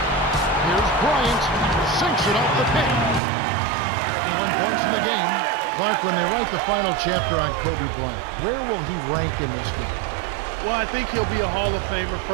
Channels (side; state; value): left; drops out; at 3.2 s